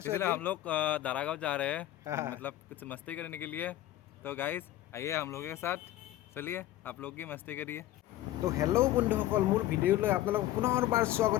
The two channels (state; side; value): quieter; right; 14.3 dB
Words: हम लोग दारागांव जा रहे हैं मतलब कुछ मस्ती करने के लिए। तो गाइस आइए हम लोगों के साथ चलिए आप लोग की मस्ती करिए। तो हेलो बंधुসকল মোৰ ভিডিঅ'লৈ আপোনালোকক পুনৰবাৰ